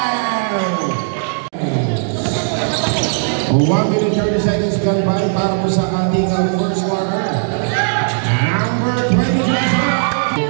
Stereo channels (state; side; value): silent; left; digital silence